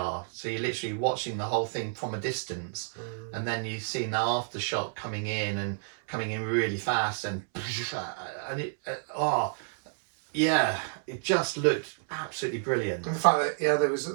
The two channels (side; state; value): left; silent; 58 dB below the other